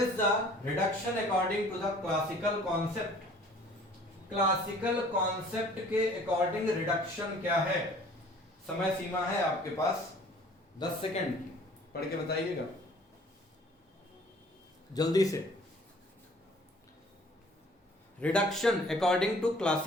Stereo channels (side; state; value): both; normal; correlation 0.53